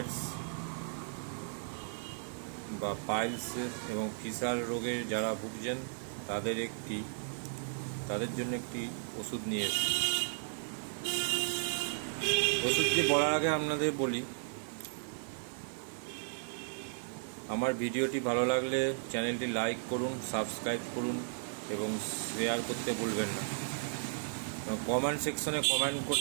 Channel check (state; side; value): silent; left; digital silence